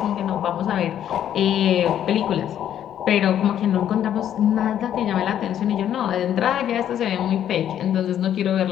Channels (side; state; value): right; quieter; 10.4 dB